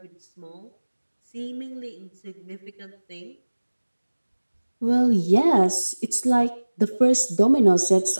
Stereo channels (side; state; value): both; inverted; correlation -1.00